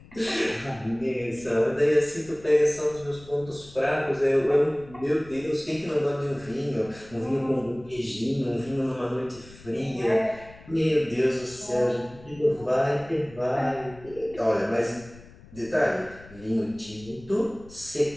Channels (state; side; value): noise; left; rumble, 21 dB below the sound